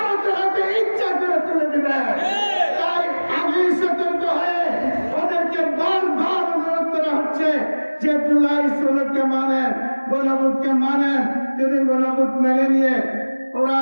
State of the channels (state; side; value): inverted; both; correlation -1.00